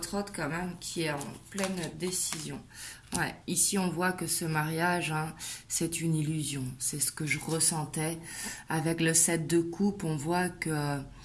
hôte quand même qui est en pleine décision. Ouais, ici, on voit que ce mariage, hein, c'est une illusion. C'est ce que je ressentais. Avec le 7 de coupe, on voit que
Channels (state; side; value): identical; both; correlation 1.00